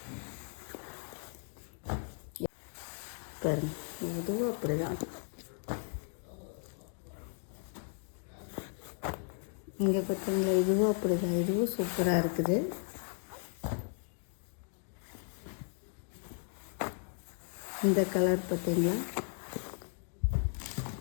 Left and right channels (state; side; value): silent; right; 54 dB below the other